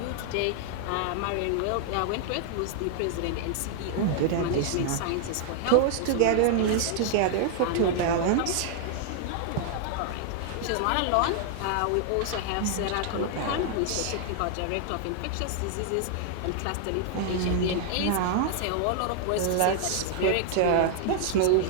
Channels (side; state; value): both; different; correlation -0.01